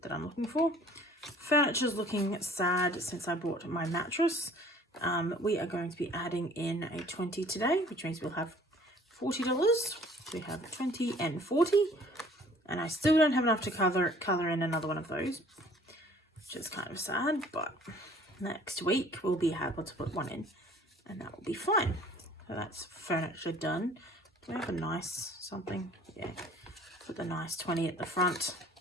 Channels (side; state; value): both; normal; correlation 0.53